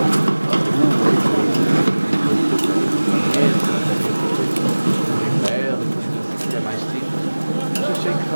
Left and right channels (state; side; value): inverted; both; correlation -1.00